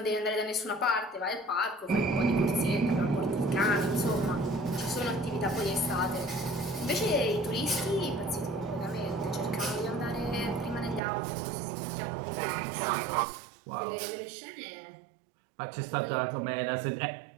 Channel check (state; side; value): drops out; left; at 11.0 s